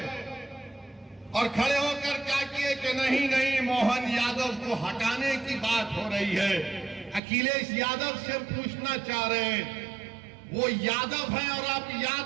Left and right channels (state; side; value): drops out; left; at 7.2 s